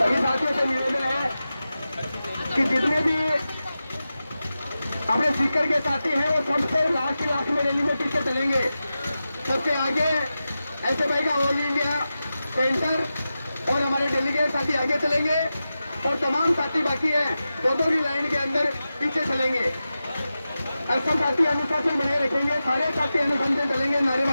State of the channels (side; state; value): both; inverted; correlation -0.93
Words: साथियों से निवेदन है कि जितने भी अपने स्पीकर के साथी हैं वो सबसे लास्ट में रैली में पीछे चलेंगे। सबसे आगे ऐसे भाई का ऑल इंडिया सेंटर और हमारे डेलीगेट साथी आगे चलेंगे और तमाम साथी बाकी हैं दो की लाइन के अंदर पीछे चलेंगे। सब साथी अनुशासन बनाए रखेंगे, सारे साथी अनुशासन चलेंगे